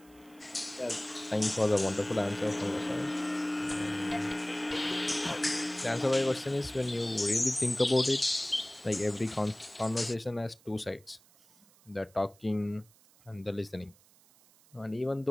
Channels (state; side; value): noise; right; hiss, 28 dB below the sound